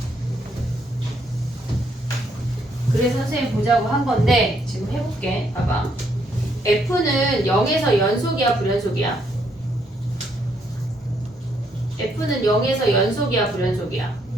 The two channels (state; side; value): normal; both; correlation 0.72